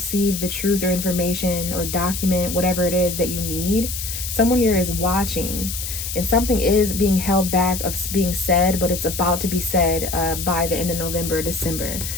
the truth or information or document, whatever it is that you need. Someone here is watching. And something is being held back of being said, but it's about to be said by the end of November, December.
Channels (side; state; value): left; noise; hiss, 6 dB below the sound